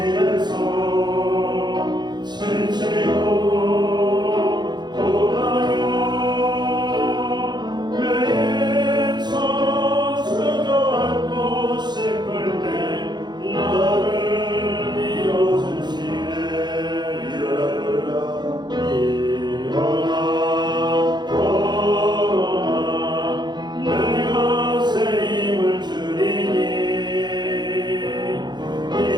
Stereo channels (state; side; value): late; left; 0.21 ms